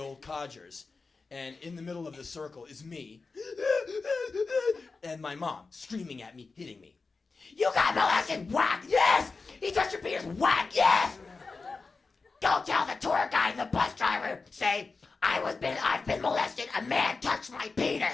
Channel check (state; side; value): quieter; right; 4.2 dB